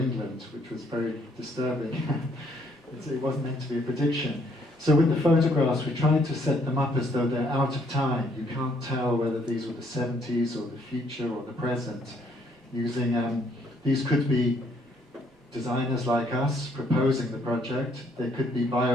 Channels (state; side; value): normal; both; correlation 0.68